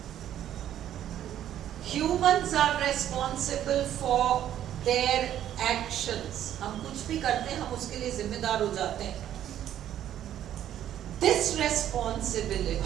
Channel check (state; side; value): quieter; left; 11.2 dB